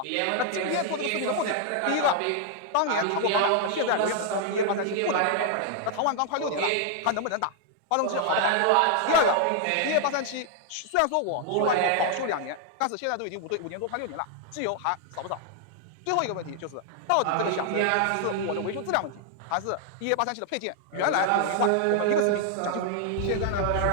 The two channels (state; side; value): different; both; correlation 0.00